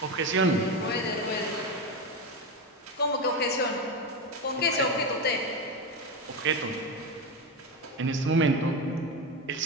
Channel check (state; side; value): normal; both; correlation 0.16